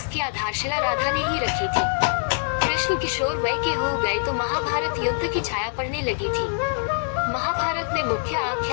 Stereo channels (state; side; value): silent; right; 63 dB below the other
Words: आधारशिला राधा ने ही रखी थी। कृष्ण किशोर वय के हो गए तो महाभारत युद्ध की छाया पड़ने लगी थी। महाभारत में मुख्य